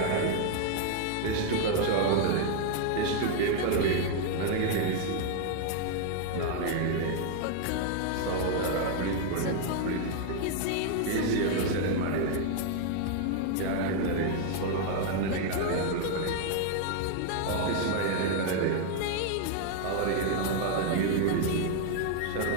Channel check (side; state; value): both; different; correlation 0.00